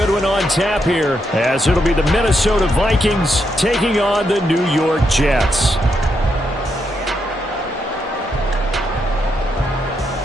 one on tap here, as it'll be the Minnesota Vikings taking on the New York Jets.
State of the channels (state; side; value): normal; both; correlation 0.80